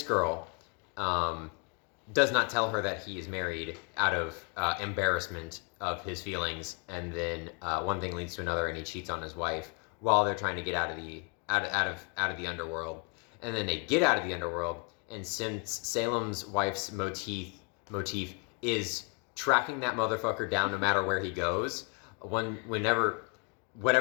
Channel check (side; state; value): right; quieter; 36.5 dB